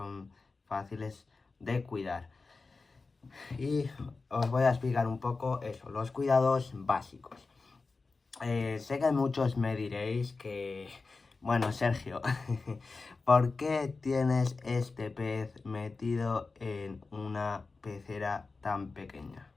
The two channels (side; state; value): right; quieter; 4.0 dB